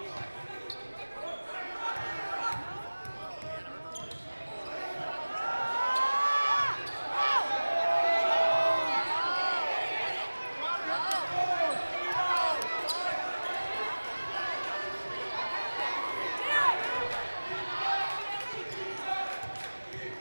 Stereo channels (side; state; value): both; inverted; correlation -1.00